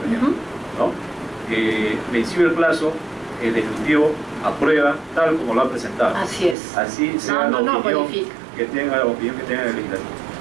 ejemplo, ¿no? Vencido el plazo, el Ejecutivo aprueba tal como lo ha presentado. Así es. Así sea la opinión que tenga el Legislativo,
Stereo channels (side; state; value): left; drops out; at 6.6 s